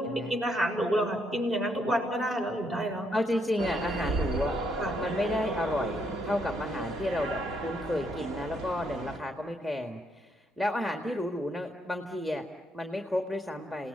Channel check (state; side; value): normal; both; correlation 0.74